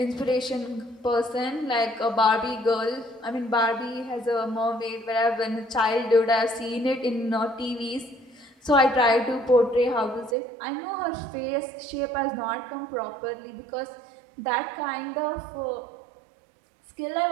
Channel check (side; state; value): left; drops out; at 10.4 s